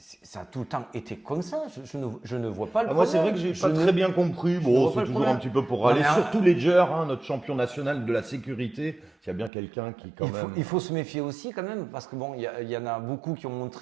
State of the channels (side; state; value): left; drops out; at 9.5 s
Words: ça a tout le temps été comme ça. Je ne vois pas le Moi, problème. c'est vrai que j'ai Je pas ne- très bien compris. ne Bon, vois pas c'est le toujours problème. un petit peu pour Non, râler. mais, Surtout Ledger, hein, notre champion national de la sécurité. S'il y a bien quelqu'un qui, quand même. Il faut se méfier aussi quand même, parce que bon, il y en a beaucoup qui ont